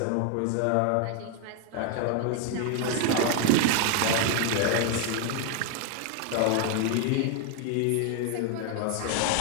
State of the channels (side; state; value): both; different; correlation 0.01